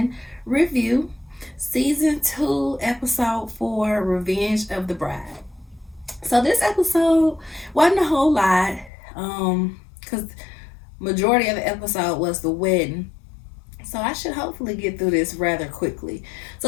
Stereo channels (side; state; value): right; drops out; at 8.9 s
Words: review. Season 2, episode 4, Revenge of the Bride. So this episode wasn't a whole lot, because majority of the episode was the wedding. So I should hopefully get through this rather quickly.